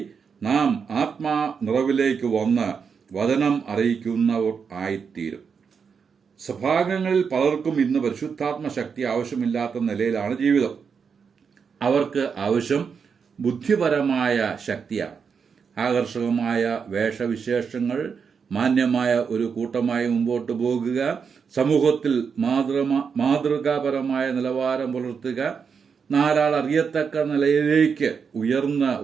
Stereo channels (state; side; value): quieter; left; 6.1 dB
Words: നാം ആത്മാ നിറവിലേക്ക് വന്ന് വചനം അറിയിക്കുന്നവർ ആയിത്തീരും. സഭാംഗങ്ങളിൽ പലർക്കും ഇന്ന് പരിശുദ്ധാത്മ ശക്തി ആവശ്യമില്ലാത്ത നിലയിലാണ് ജീവിതം. അവർക്ക് ആവശ്യം ബുദ്ധിപരമായ ശക്തിയാണ്. ആകർഷകമായ വേഷവിശേഷങ്ങൾ, മാന്യമായ ഒരു കൂട്ടമായി മുമ്പോട്ട് പോകുക, സമൂഹത്തിൽ മാതൃകാപരമായ നിലവാരം പുലർത്തുക, 4 ആൾ അറിയത്തക്ക നിലയിലേക്ക് ഉയർന്ന്